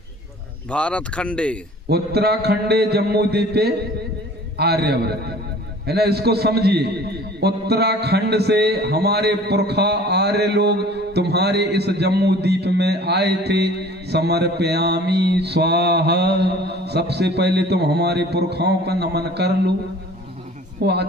भारत खंडे उत्तराखंडे जम्मू द्वीपे आर्यव्रत, है ना। इसको समझिए, उत्तराखंड से हमारे पुरखा आर्य लोग तुम्हारे इस जम्मू द्वीप में आए थे। समर्पयामी स्वाहा, सबसे पहले तुम हमारे पुरखाओं का नमन कर लो। वो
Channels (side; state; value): both; normal; correlation 0.48